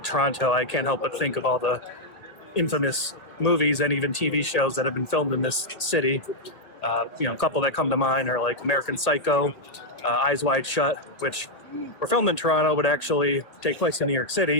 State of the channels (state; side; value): late; right; 1.6 ms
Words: Toronto, I can't help but think of all the infamous movies and even TV shows that have been filmed in this city. You know, a couple that come to mind are like American Psycho, Eyes Wide Shut, which were filmed in Toronto but actually take place in New York